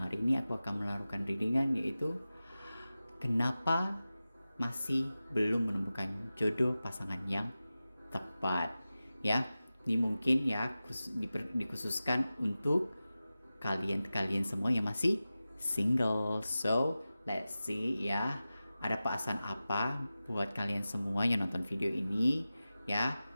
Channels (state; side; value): inverted; both; correlation -0.95